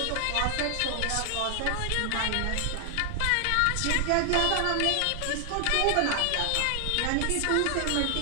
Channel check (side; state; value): both; different; correlation 0.00